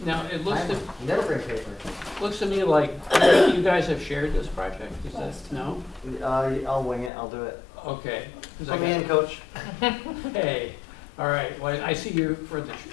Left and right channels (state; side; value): drops out; right; at 7.1 s